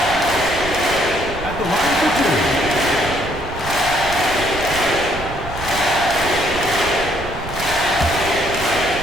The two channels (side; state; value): right; noise; rumble, 11 dB below the sound